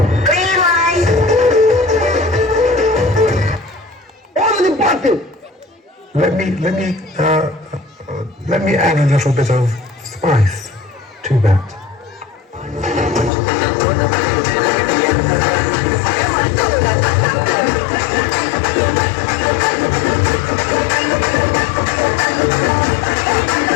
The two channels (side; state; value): right; drops out; at 13.3 s